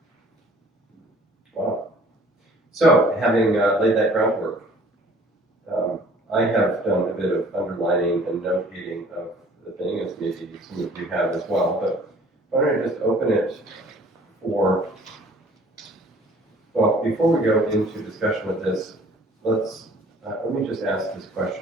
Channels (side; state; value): both; normal; correlation 0.53